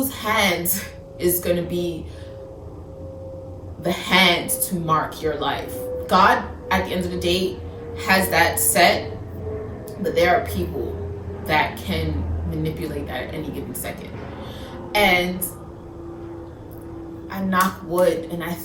hands is going to be the hands to mark your life. God, at the end of the day, has that set, but there are people that can manipulate that at any given second. And I knock wood, and I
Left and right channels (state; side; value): identical; both; correlation 1.00